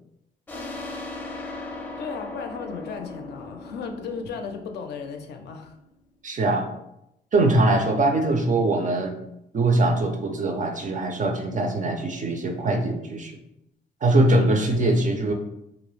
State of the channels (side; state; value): both; normal; correlation 0.56